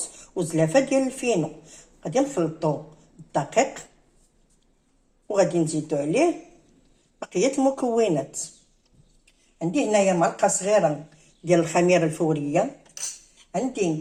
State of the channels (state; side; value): identical; both; correlation 1.00